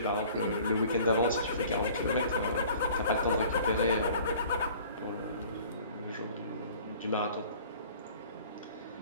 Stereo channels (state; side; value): inverted; both; correlation -0.49